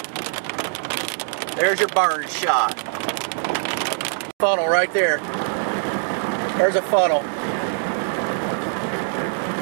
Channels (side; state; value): left; silent; digital silence